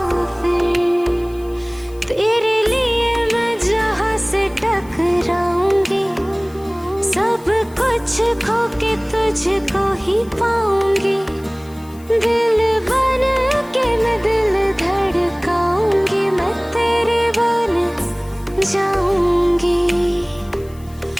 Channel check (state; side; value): noise; left; hiss, 25 dB below the sound